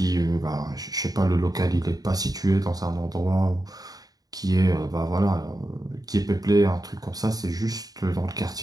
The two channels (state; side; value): late; left; 0.18 ms